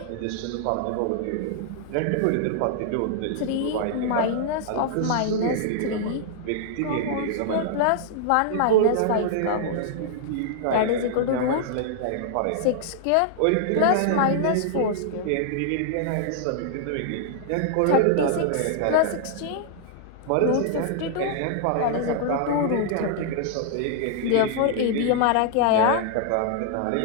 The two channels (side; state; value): both; different; correlation -0.01